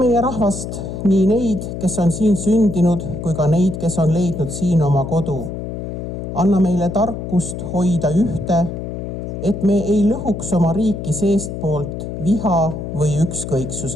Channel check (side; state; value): left; noise; hum, 7 dB below the sound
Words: rahvast, nii neid, kes on siin sündinud, kui ka neid, kes on leidnud siin oma kodu. Anna meile tarkust hoida ühte, et me ei lõhuks oma riiki seestpoolt viha või